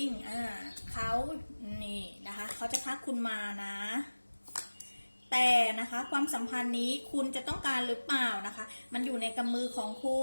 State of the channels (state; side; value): inverted; both; correlation -1.00